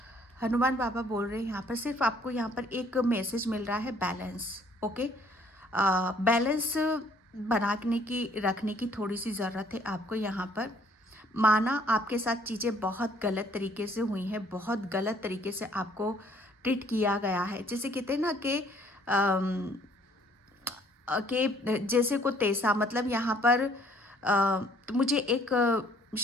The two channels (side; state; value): both; normal; correlation 0.61